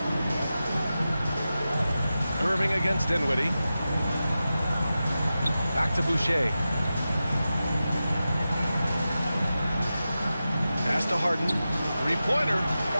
Irving against Dinwiddie. Back to Boucher. Pass to Harden. Three-pointer.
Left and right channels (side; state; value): both; inverted; correlation -0.93